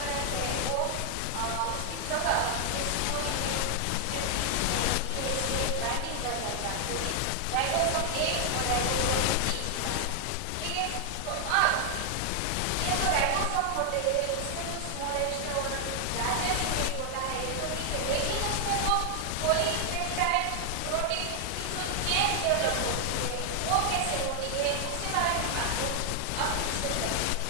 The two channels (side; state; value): both; different; correlation 0.00